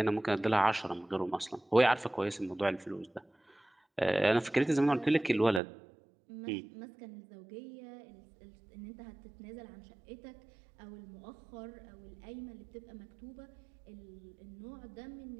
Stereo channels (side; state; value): left; drops out; at 5.6 s